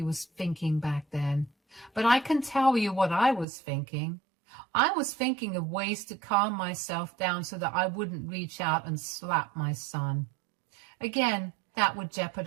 was thinking back then. But I can tell you what I was thinking. I was thinking of ways to calm myself down so that I wouldn't reach out and slap my son. Again, that would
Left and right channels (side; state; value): left; drops out; at 3.5 s